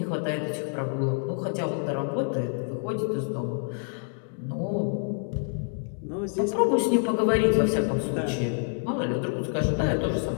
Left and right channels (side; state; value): right; silent; 60 dB below the other